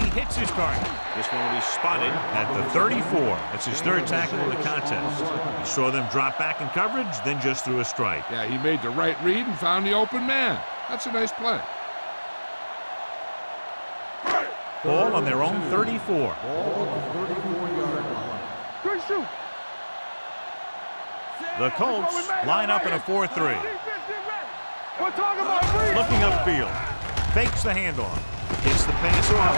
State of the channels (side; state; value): both; inverted; correlation -1.00